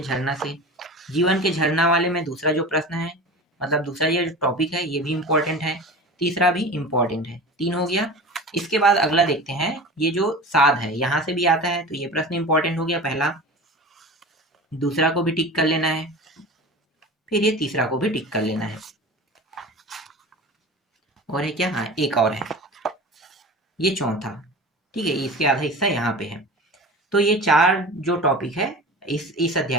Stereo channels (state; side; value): normal; both; correlation 0.34